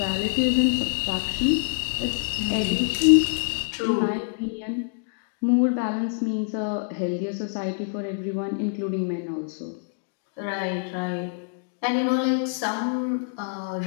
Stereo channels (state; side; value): silent; right; digital silence